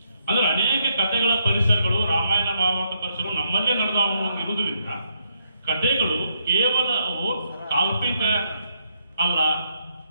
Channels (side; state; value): both; inverted; correlation -0.76